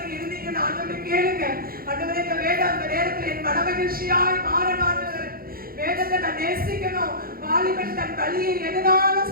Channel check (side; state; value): left; late; 0.43 ms